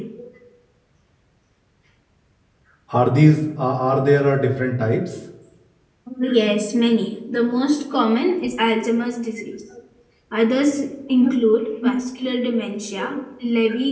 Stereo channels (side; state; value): both; identical; correlation 1.00